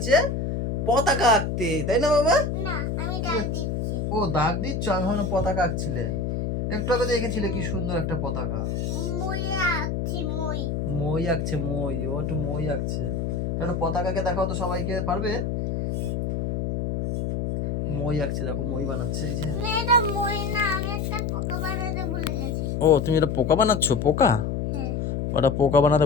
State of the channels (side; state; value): left; noise; hum, 1 dB below the sound